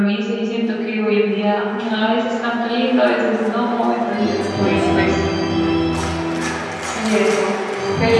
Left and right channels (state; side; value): identical; both; correlation 1.00